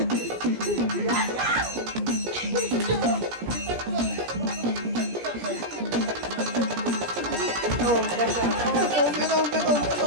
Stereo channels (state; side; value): late; left; 17 ms